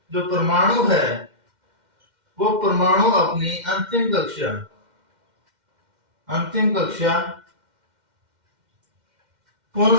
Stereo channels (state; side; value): late; left; 2.1 ms